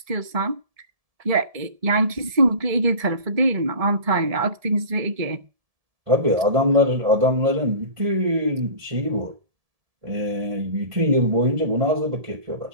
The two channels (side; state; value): left; late; 1.7 ms